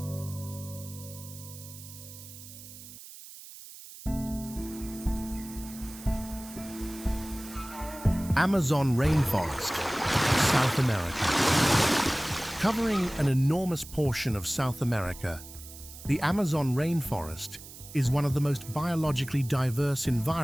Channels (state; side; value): noise; right; hiss, 16 dB below the sound